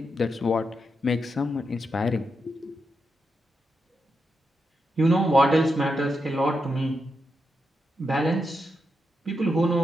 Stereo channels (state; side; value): normal; both; correlation 0.85